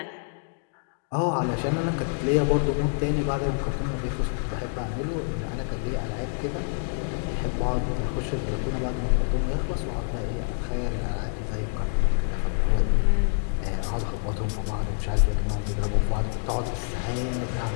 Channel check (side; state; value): right; silent; 60 dB below the other